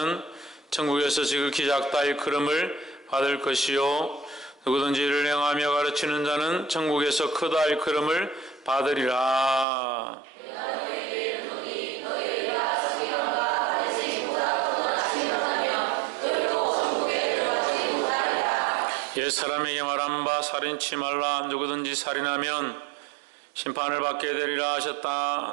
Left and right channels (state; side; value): drops out; left; at 9.7 s